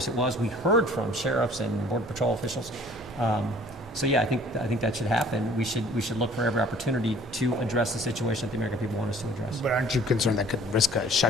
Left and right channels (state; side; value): normal; both; correlation 0.52